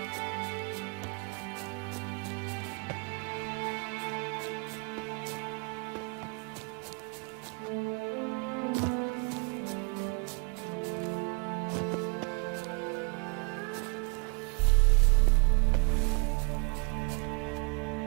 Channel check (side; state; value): left; quieter; 33.3 dB